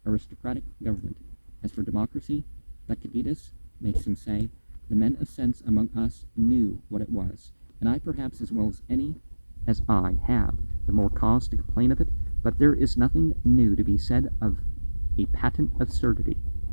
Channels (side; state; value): both; inverted; correlation -1.00